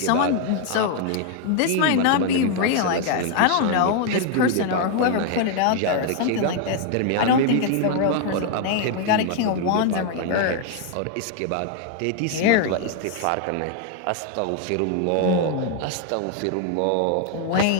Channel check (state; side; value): different; both; correlation 0.00